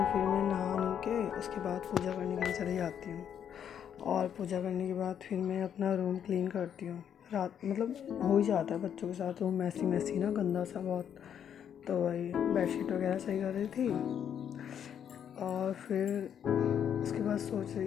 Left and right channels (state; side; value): quieter; right; 8.8 dB